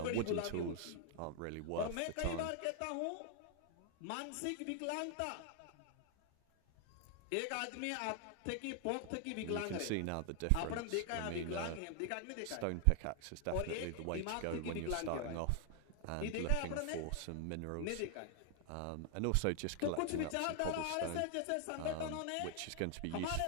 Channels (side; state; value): both; different; correlation 0.00